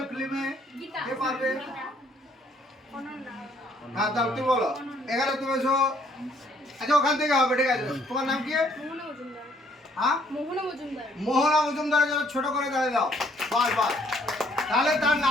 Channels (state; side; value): normal; both; correlation 0.65